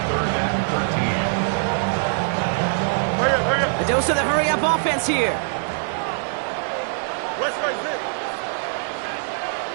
and 13. Hurry up. A dose of the hurry-up offense here. West right zip.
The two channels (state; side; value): silent; left; digital silence